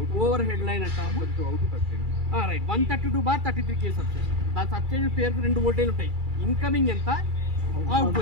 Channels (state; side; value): late; left; 2.3 ms